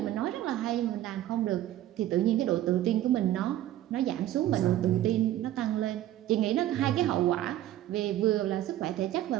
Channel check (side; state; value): left; quieter; 13.2 dB